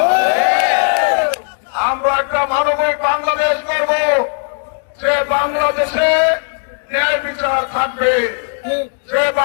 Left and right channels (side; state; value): right; silent; 58 dB below the other